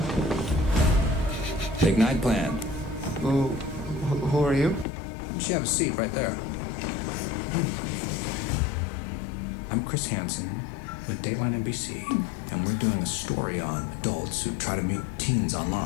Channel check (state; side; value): drops out; right; at 4.9 s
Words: Big night plan. Who are you? Why don't you have a seat right there? I'm Chris Hansen with Dateline NBC, and we're doing a story on adults who try to meet teens